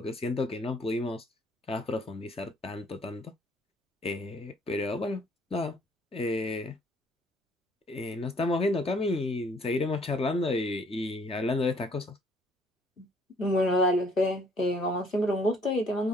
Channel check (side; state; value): both; normal; correlation 0.62